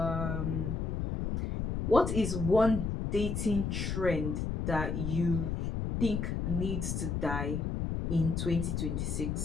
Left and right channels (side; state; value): left; noise; rumble, 1 dB below the sound